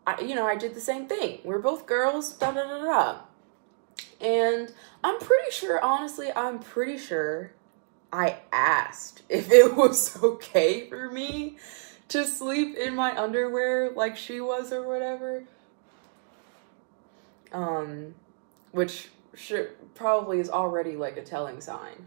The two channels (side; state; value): left; silent; digital silence